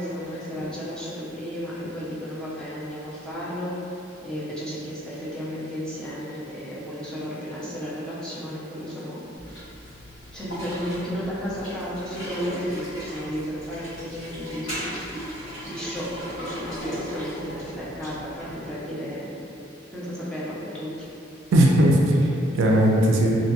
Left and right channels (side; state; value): both; normal; correlation 0.67